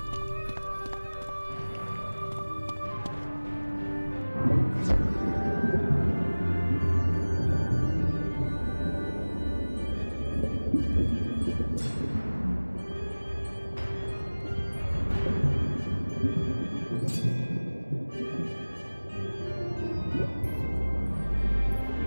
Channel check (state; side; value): inverted; both; correlation -1.00